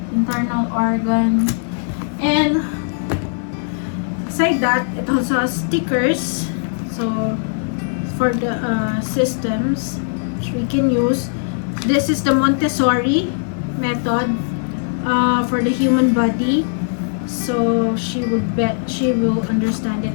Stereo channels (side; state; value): right; silent; digital silence